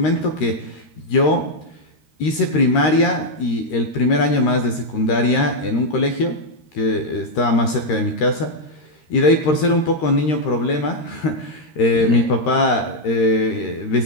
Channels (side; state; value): right; late; 13 ms